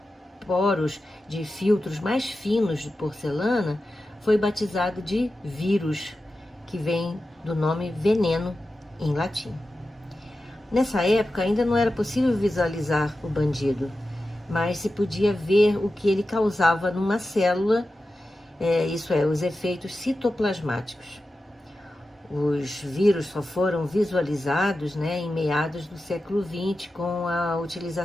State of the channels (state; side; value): normal; both; correlation 0.93